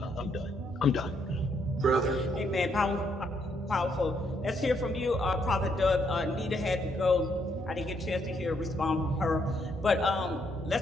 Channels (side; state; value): both; normal; correlation 0.74